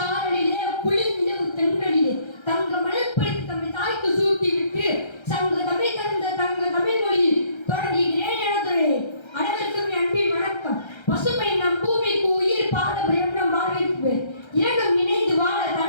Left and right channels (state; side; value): late; right; 1.3 ms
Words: குளிர்ந்த தென்றலிலே தங்க மலர் பறித்து தமிழ் தாய்க்கு சூட்டி விட்டு சங்க தமிழ் தந்த தங்க தமிழ் மொழியில் தொடங்குகிறேன் எனதுரை அனைவருக்கும் அன்பின் வணக்கம். பசுமை நம் பூமிக்கு உயிர் பாரம்பரியம் நம் வாழ்விற்கு இரண்டும் இணைந்து வாழ